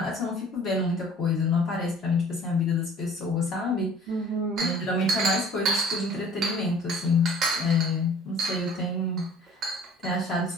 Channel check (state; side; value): normal; both; correlation 0.50